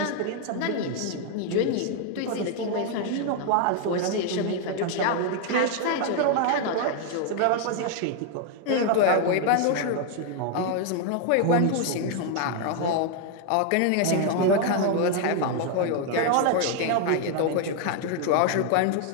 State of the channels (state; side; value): different; both; correlation 0.00